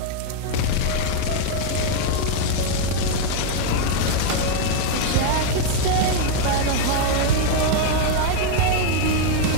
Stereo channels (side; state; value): both; different; correlation 0.00